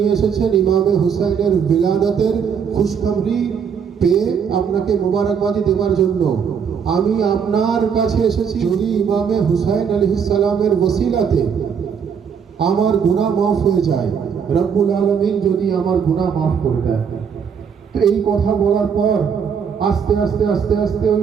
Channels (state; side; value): quieter; left; 6.9 dB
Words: এসেছেন ইমামে হুসাইনের বিলাদতের খুশখবরি পেয়ে আপনাকে মোবারকবাদি দেওয়ার জন্য। আমি আপনার কাছে এসেছি, যদি ইমামে হুসাইন আলাইহিস সালামের ওসিলাতে আমার গুনাহ মাফ হয়ে যায়, রব্বুল আলামিন যদি আমার গুনাহ মাফ করে দেয়। তো এই কথা বলার পর আস্তে আস্তে আস্তে আস্তে